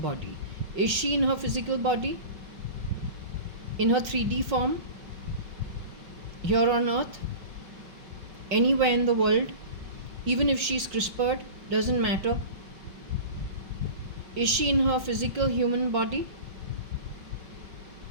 Is she in her physical body? In her 3D form? Here on earth? Anywhere in the world? Even if she's CRISPR'd, doesn't matter. Is she in her physical human body?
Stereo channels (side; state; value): left; late; 5.3 ms